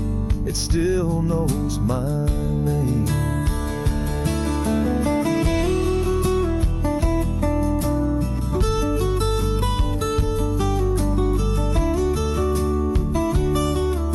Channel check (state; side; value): identical; both; correlation 1.00